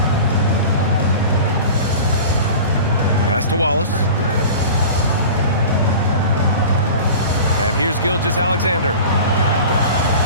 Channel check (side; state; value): both; inverted; correlation -0.37